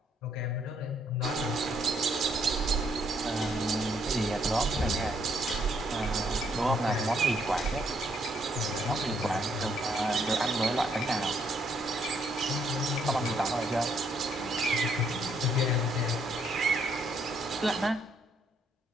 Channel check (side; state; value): both; normal; correlation 0.71